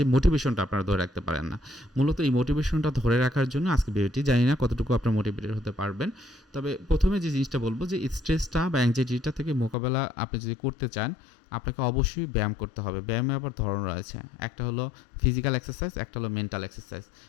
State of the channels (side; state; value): right; drops out; at 9.8 s